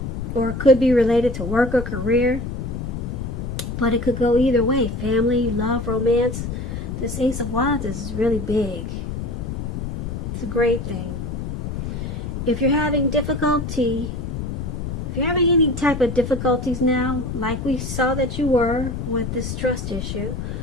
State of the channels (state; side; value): noise; left; rumble, 5 dB below the sound